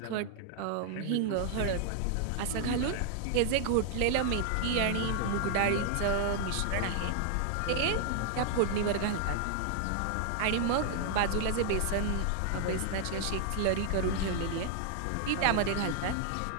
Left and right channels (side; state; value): both; different; correlation 0.00